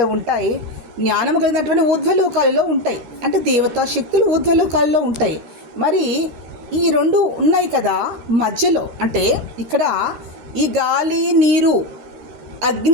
ఉంటాయి, జ్ఞానము కలిగినటువంటి ఊర్ధ్వలోకాలలో ఉంటాయి, అంటే దేవతా శక్తులు ఊర్ధ్వలోకాలలో ఉంటాయి. మరి ఈ 2 ఉన్నాయి కదా మధ్యలో, అంటే ఇక్కడ ఈ గాలి, నీరు,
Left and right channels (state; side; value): late; left; 13 ms